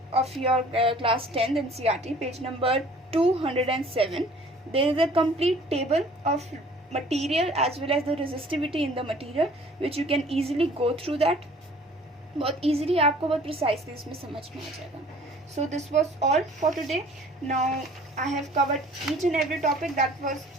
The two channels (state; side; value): normal; both; correlation 0.52